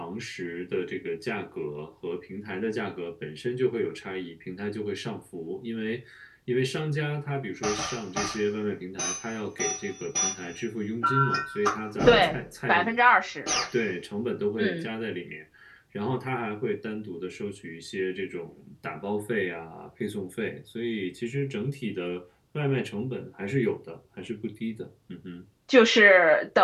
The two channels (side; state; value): both; identical; correlation 1.00